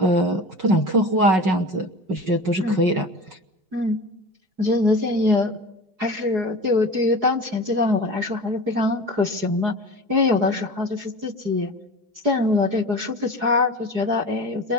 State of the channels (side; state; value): left; late; 4.8 ms